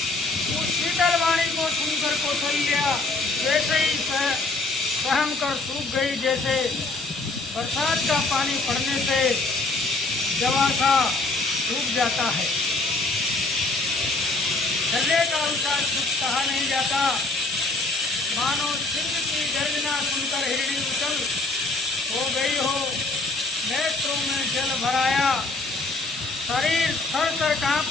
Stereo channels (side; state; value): right; quieter; 3.3 dB